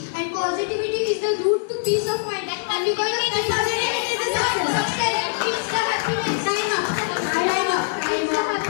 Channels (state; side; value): silent; right; digital silence